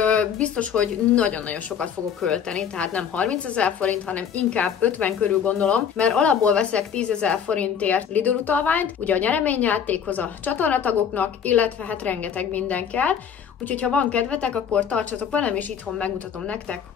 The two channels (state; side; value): quieter; right; 7.8 dB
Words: biztos, hogy nagyon-nagyon sokat fogok költeni, tehát nem 30 000 forint, hanem inkább 50 körül gondolom, mert alapból veszek 10 000 forintért Lidl utalványt, ugye a nyereményjátékhoz a csatornatagoknak, illetve hát rengeteg minden kell. Úgyhogy ha van kedvetek, akkor tartsatok velem, és itthon megmutatom nektek,